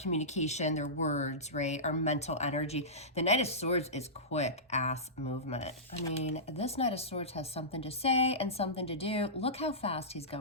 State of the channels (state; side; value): normal; both; correlation -0.19